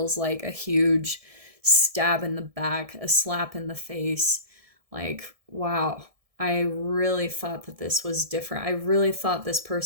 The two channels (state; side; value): late; left; 1.7 ms